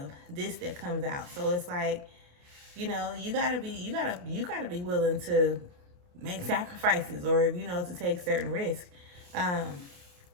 Discs that comes out. So it's like, you know, you gotta be willing to make sacrifices, or, you know, to take certain risks.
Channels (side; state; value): left; late; 28 ms